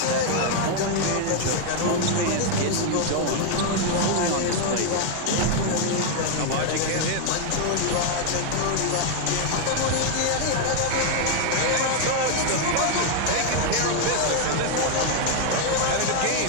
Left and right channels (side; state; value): both; different; correlation 0.01